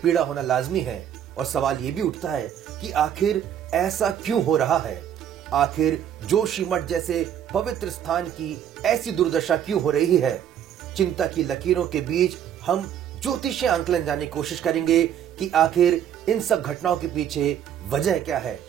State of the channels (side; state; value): left; quieter; 9.8 dB